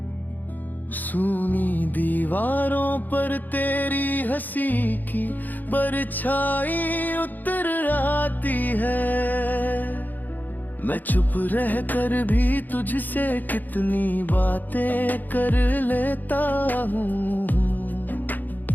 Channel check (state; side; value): late; right; 0.085 ms